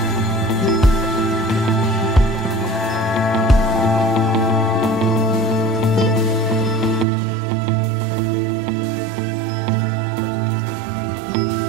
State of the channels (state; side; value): drops out; left; at 7.1 s